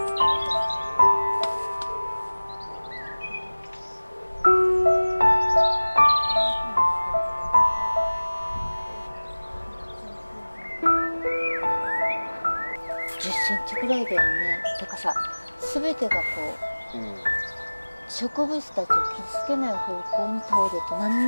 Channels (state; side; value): inverted; both; correlation -1.00